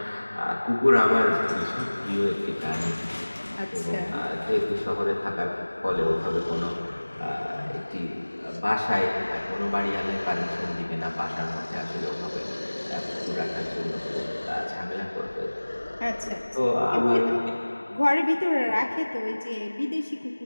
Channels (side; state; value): both; inverted; correlation -1.00